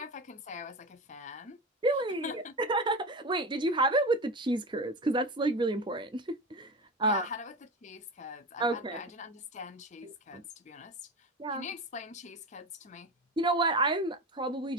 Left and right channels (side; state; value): both; normal; correlation 0.24